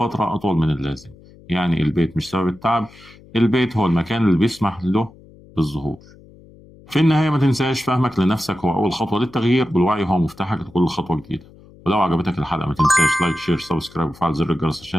أطول من اللازم. يعني البيت مش سبب التعب، البيت هو المكان اللي بيسمح له بالظهور. في النهاية ما تنساش، فهمك لنفسك هو أول خطوة للتغيير، والوعي هو مفتاحك لكل خطوة جديدة. ولو عجبتك الحلقة ما تنساش لايك، شير، سبسكرايب، وفعل زر الجرس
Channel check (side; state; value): left; noise; hum, 24 dB below the sound